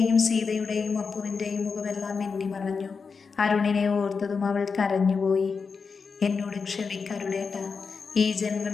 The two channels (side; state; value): right; quieter; 5.2 dB